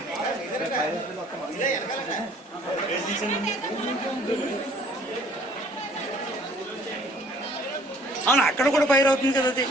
అవును అక్కడ కూడా ఫైర్ అవుతుంది కదా అది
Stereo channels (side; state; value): both; normal; correlation 0.56